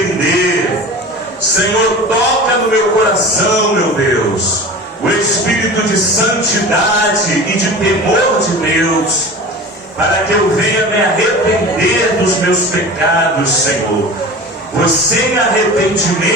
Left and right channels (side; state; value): both; normal; correlation 0.35